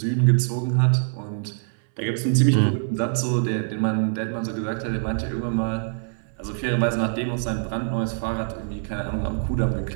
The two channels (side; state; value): left; silent; 62 dB below the other